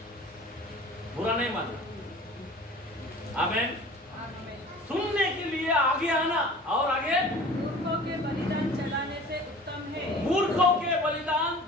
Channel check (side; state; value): both; normal; correlation 0.44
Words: बुरा नहीं मानना। आमीन। सुनने के लिए आगे आना और आगे। मूर्खों के बलिदान चढ़ाने से उत्तम है। मूर्खों के बलिदान